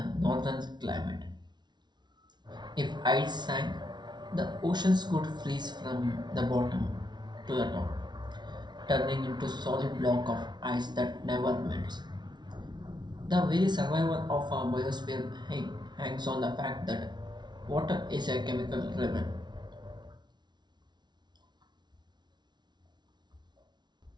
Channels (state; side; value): late; left; 0.20 ms